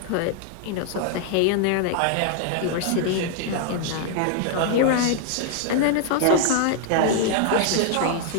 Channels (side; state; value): both; different; correlation 0.00